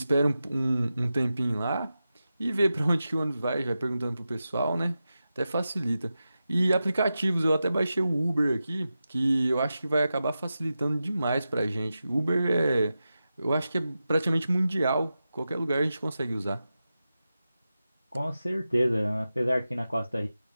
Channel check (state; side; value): inverted; both; correlation -0.92